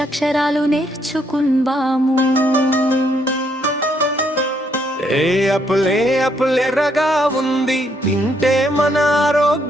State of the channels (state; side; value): normal; both; correlation 0.72